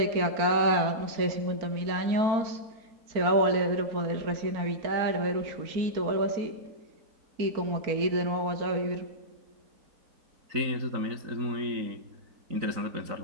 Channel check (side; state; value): left; late; 4.4 ms